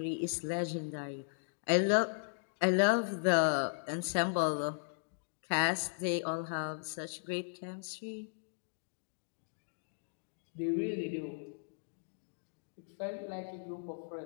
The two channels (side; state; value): right; silent; digital silence